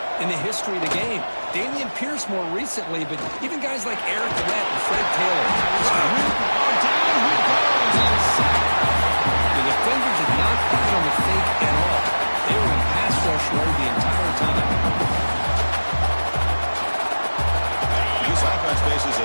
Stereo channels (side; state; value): both; inverted; correlation -1.00